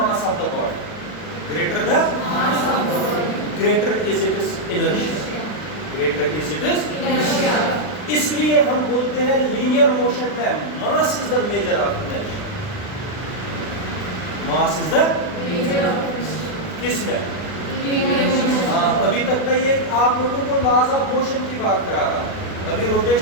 of the body, greater the greater is it is inertia, greater is it is inertia. इसलिए हम बोलते हैं लीनियर मोशन में mass is the measure of inertia. Mass is the measure of किसमें? हाँ, अभी तक मैं ये आप लोगों को लॉज ऑफ मोशन की बात करा रहा, अभी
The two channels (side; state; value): right; late; 40 ms